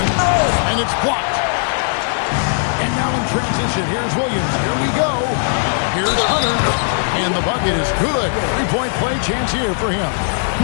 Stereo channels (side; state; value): right; silent; digital silence